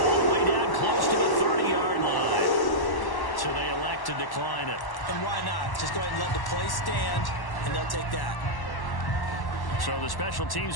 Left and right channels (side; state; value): right; late; 1.1 ms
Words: the way down close to the 30-yard line. So they elect to decline it. And why not? Just go ahead and let the play stand, and they'll take that. So the special